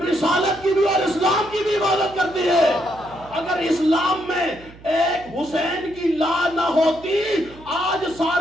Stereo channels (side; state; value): right; noise; hum, 21 dB below the sound